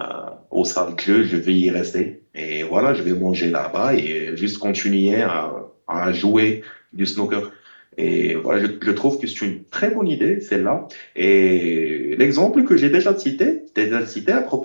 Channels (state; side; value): inverted; both; correlation -1.00